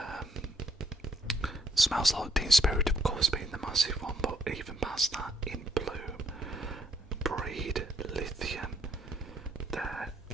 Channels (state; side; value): normal; both; correlation 0.69